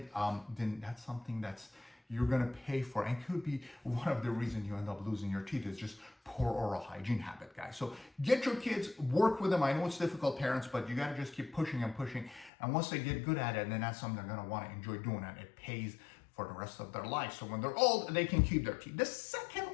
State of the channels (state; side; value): drops out; right; at 12.5 s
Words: then that's something that's you're going to pay for, and could be one of the reasons you end up losing your teeth is just poor oral hygiene habit, guys. So get your kids, work with them. I know it's difficult, parents, but you got to just keep pushing and pushing. And once they get good at it, then that's something they're going to want to enjoy doing, and it pays for the rest of their life. So when they're old, they can keep their teeth. The second